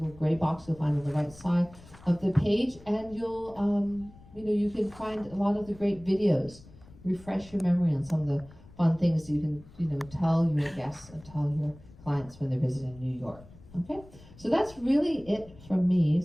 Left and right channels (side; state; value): left; noise; rumble, 21 dB below the sound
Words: gray box you'll find on the right side of the page, and you'll, you can find a lot of the great videos, refresh your memory on some of the fun things you can, tell your guests and tell your clients when they're visiting New York. Okay, so that's really it from me.